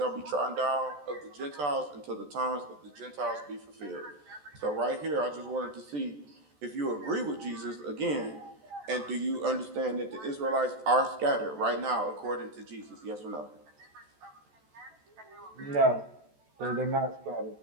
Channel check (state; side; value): late; left; 14 ms